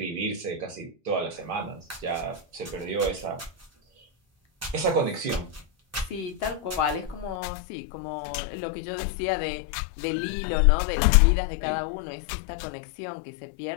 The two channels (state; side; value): drops out; right; at 7.4 s